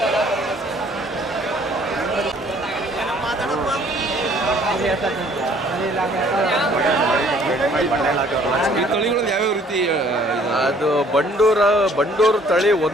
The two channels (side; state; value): both; normal; correlation 0.58